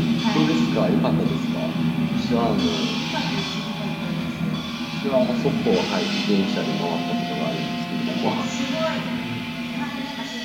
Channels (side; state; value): both; identical; correlation 1.00